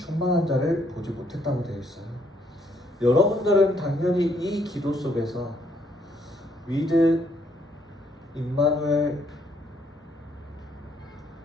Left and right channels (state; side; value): normal; both; correlation 0.69